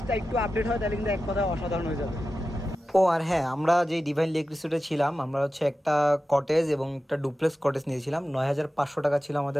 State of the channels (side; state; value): both; normal; correlation 0.93